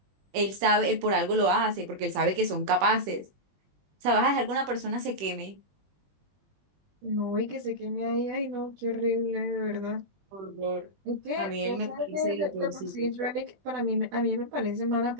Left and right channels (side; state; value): left; late; 21 ms